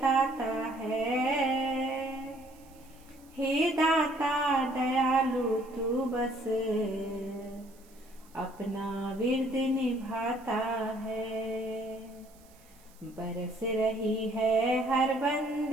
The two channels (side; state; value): right; noise; hiss, 28 dB below the sound